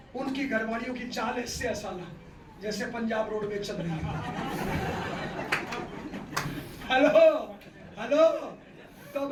उनकी घरवालियों की चाल ऐसे है साला जैसे पंजाब रोड में चल रही है। हेलो हेलो, तो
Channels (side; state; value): both; identical; correlation 1.00